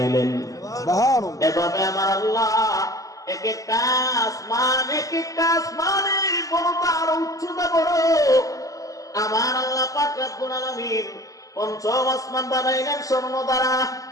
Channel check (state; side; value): late; right; 0.17 ms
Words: এভাবে আমার আল্লাহ এক একটা আসমানের বড়টা আরো উচ্চতা বড়। আমার আল্লাহ পাক রব্বুল আলামিন পঞ্চম আসমান বানাইলেন স্বর্ণ দ্বারা,